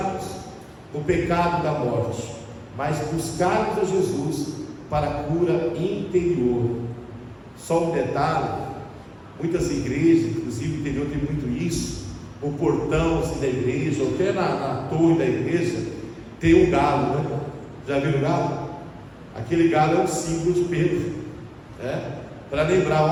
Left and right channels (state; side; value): identical; both; correlation 1.00